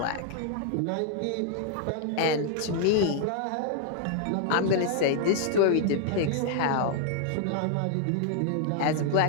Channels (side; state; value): both; different; correlation -0.01